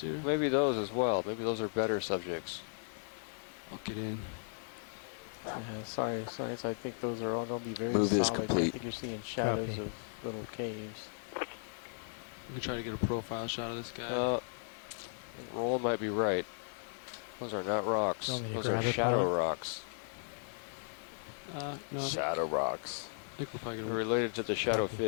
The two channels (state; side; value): silent; right; digital silence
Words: here? Maybe those as well. Maybe those are better subjects. I'll get in. Yeah, sorry, I think those are all going to be very Move solid. is complete. I think you're seeing shadows Copy. of little caves. We can try to get a profile shot of this guy. I think Roland might be right. Those are not rocks. You want me to Those are grab it, shadow pilot? rocks. No. Shadow rocks. I think we're probably They're gonna related to the shadow